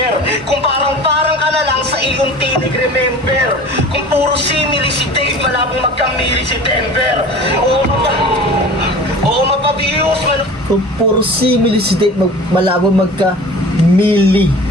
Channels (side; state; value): both; normal; correlation 0.40